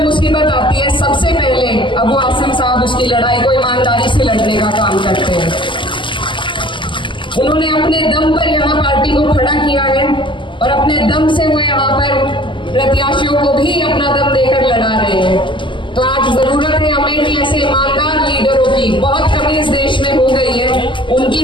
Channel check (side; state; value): right; late; 0.24 ms